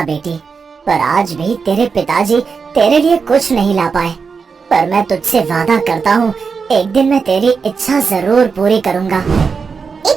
बेटी, पर आज भी तेरे पिताजी तेरे लिए कुछ नहीं ला पाए। पर मैं तुझसे वादा करता हूँ, एक दिन मैं तेरी इच्छा जरूर पूरी करूँगा।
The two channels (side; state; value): left; quieter; 5.4 dB